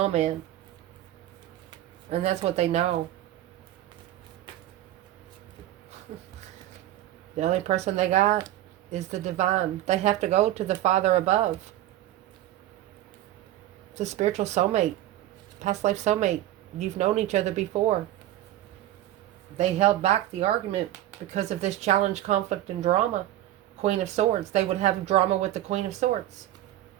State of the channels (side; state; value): left; quieter; 13.8 dB